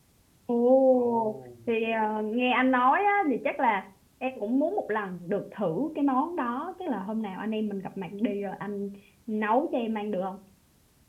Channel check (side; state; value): both; identical; correlation 1.00